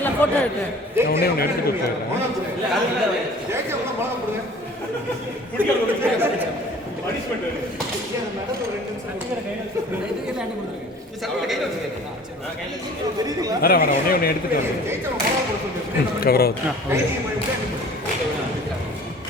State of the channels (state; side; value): normal; both; correlation 0.47